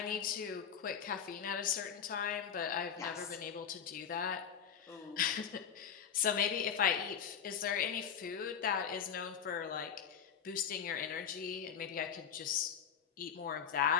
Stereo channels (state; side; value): quieter; right; 7.8 dB